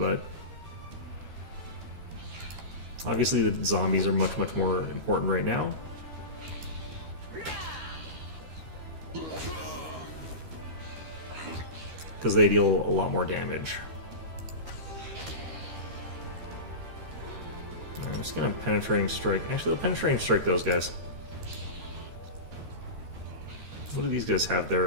obviously the zombies are much, much more important right now. Because they deal a lot more damage. I'm just gonna penetrating strike. Actually, the penetrating strike those guys. What do these guys have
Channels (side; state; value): left; late; 13 ms